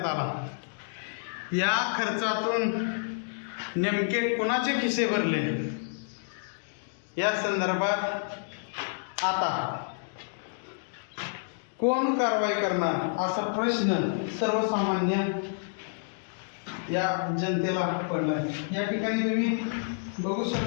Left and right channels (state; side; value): silent; right; digital silence